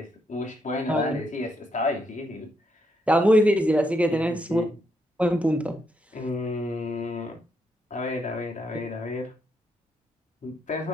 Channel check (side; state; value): both; normal; correlation 0.78